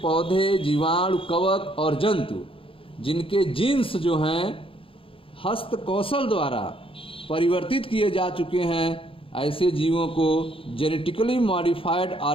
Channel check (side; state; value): right; late; 0.26 ms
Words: जीवाणु, कवक और जंतु जिनके जीन्स जो हैं हस्त कौशल द्वारा परिवर्तित किए जा चुके हैं, ऐसे जीवों को जेनेटिकली मॉडिफाइड